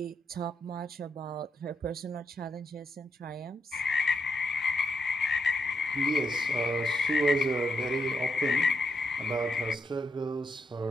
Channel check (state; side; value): normal; both; correlation 0.80